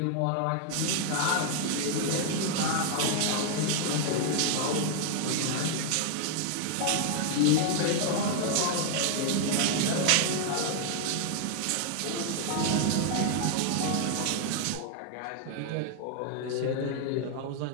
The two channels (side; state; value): both; different; correlation 0.00